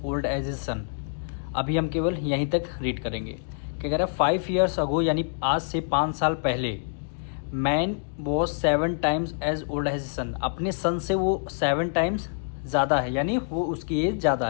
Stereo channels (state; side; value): silent; right; digital silence